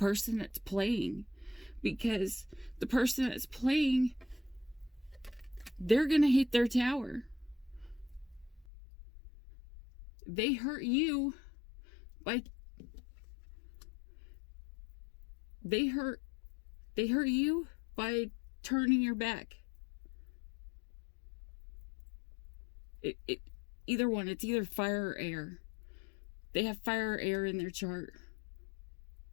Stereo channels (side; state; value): right; drops out; at 8.7 s